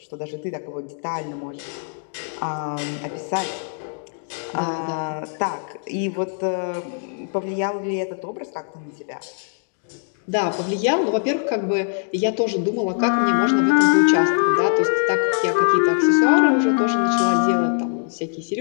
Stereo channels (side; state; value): right; silent; digital silence